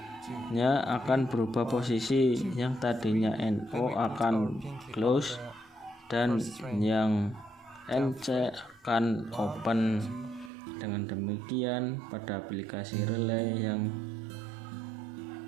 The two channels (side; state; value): left; drops out; at 10.5 s